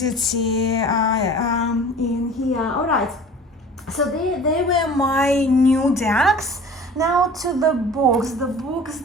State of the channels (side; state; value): both; normal; correlation 0.43